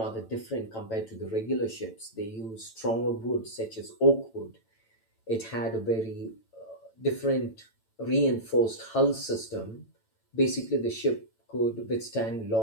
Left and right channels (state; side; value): late; right; 9.0 ms